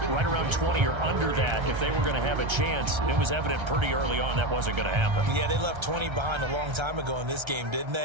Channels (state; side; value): late; left; 1.3 ms